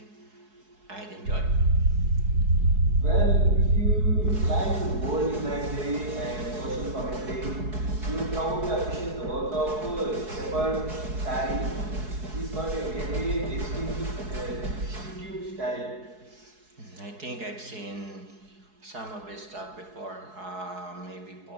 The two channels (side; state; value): left; late; 4.7 ms